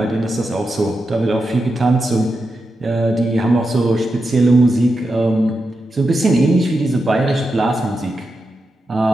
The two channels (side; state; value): both; normal; correlation 0.88